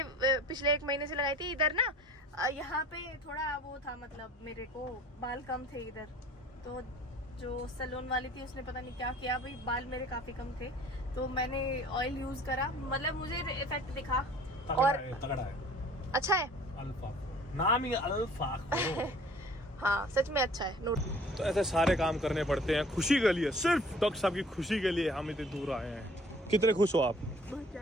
पिछले 1 महीने से लगाई थी इधर ना, यहाँ पे थोड़ा वो था, मतलब मेरे को बाल कम थे इधर, तो जो सैलून वाली थी उसने पता नहीं क्या किया भाई, बाल मेरे काफी कम थे, तो मैंने ऑयल यूज करा, मतलब मुझे इफेक्ट दिखा। और तगड़ा है, अच्छा है, अल्फा नाम ही अल्फा हाँ सच में अच्छा है। नोट तो ऐसे सारे काम करने पड़ते हैं खुशी के लिए, सिर्फ डॉक्टर साहब की खुशी के लिए हम इतने दूर आए हैं। कितने खुश हो आप? बहुत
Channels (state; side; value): normal; both; correlation 0.50